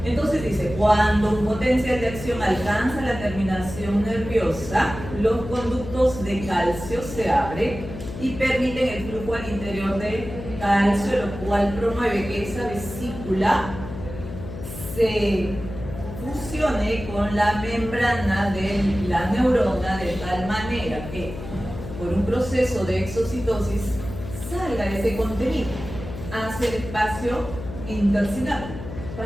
Entonces dice, cuando un potencial de acción alcanza la terminación nerviosa, los conductos de calcio se abren y permiten el flujo al interior de calcio, lo cual promueve que esa vesícula se fusione con la membrana de la neurona de tal manera que por un proceso de exocitosis salga ese contenido hacia el espacio intersináptico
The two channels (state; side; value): noise; left; hum, 10 dB below the sound